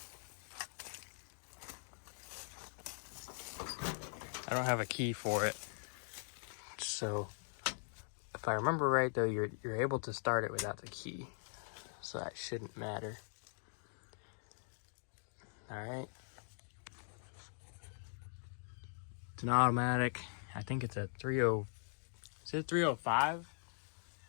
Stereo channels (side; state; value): right; silent; digital silence